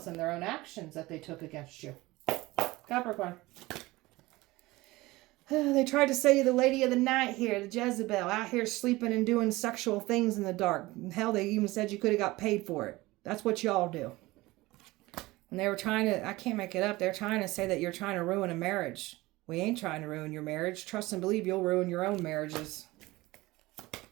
and their own actions that they took against you. Capricorn. They tried to say you're the lady of the night here, the Jezebel, out here sleeping and doing sexual things in the dark. Hell, they even said you could have got paid for it. That's what y'all do. And they were trying to, I can't make it up, they're trying to say that you're trying to ruin a marriage. We ain't trying to ruin your marriage. Trust and believe you'll ruin your own marriages.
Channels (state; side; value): quieter; left; 20.1 dB